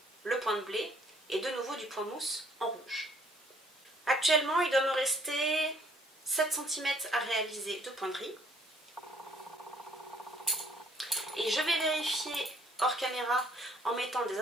le point de blé et de nouveau du point mousse en rouge. Actuellement, il doit me rester 7 cm à réaliser de point de riz. Et je vais vérifier hors caméra en mettant des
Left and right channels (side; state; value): both; normal; correlation 0.62